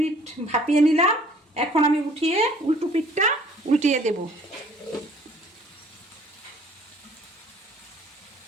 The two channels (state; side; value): normal; both; correlation 0.56